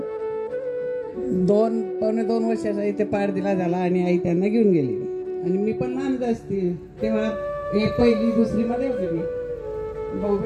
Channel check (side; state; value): both; identical; correlation 1.00